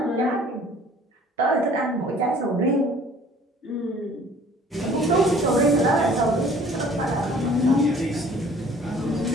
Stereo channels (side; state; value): both; normal; correlation 0.53